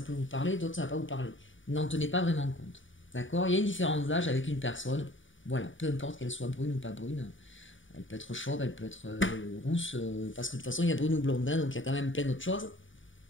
peut vous parler, d'autres, ça ne va pas vous parler. N'en tenez pas vraiment compte. D'accord? Il y a une différence d'âge avec une personne. Voilà, peu importe qu'elle soit brune ou pas brune. Elle peut être chauve, elle peut être rousse, parce que de toute façon, il y a brune ou blonde, hein, donc il y a quand même plein d'autres choses.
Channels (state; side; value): late; right; 0.56 ms